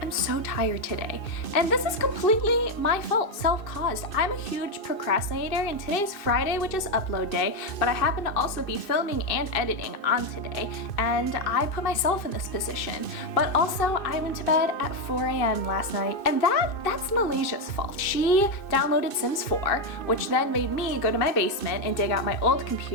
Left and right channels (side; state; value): right; late; 2.6 ms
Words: am so tired today, and this is completely my fault, self-caused. I'm a huge procrastinator, and today's Friday, which is upload day, but I happen to also be filming and editing on today, and I put myself in this position. But also, I went to bed at 4 a.m. last night, and that's Malaysia's fault. She downloaded Sims 4, which then made me go to my basement and dig out my old